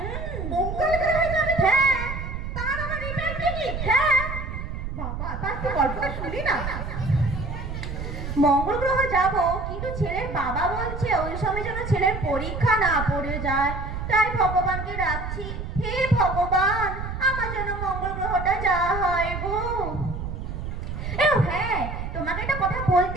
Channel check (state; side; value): noise; right; rumble, 6 dB below the sound